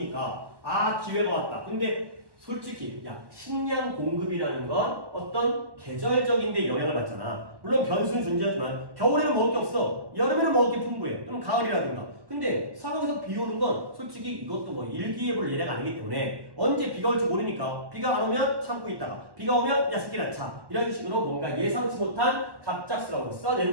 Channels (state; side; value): late; left; 1.1 ms